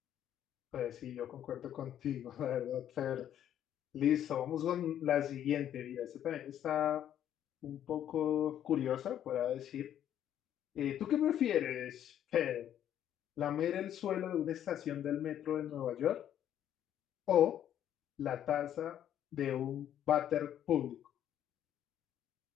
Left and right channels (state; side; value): quieter; right; 10.6 dB